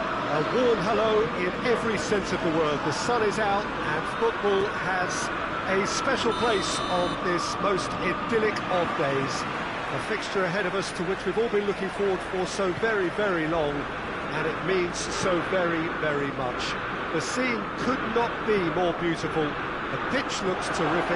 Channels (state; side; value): identical; both; correlation 1.00